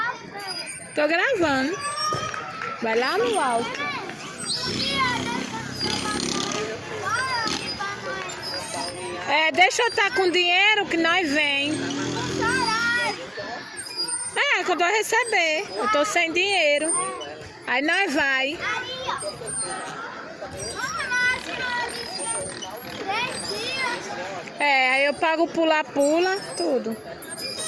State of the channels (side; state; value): both; identical; correlation 1.00